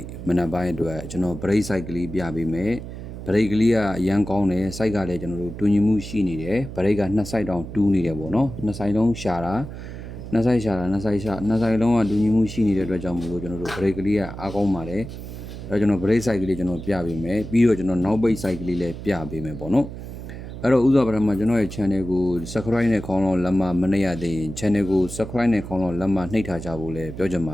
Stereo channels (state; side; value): noise; right; hum, 10 dB below the sound